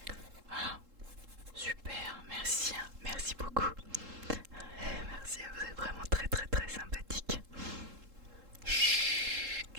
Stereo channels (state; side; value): late; left; 3.7 ms